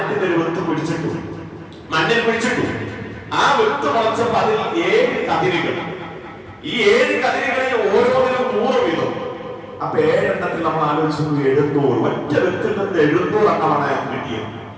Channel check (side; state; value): both; identical; correlation 1.00